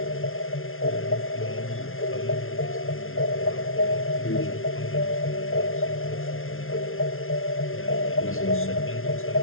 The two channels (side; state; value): right; late; 0.61 ms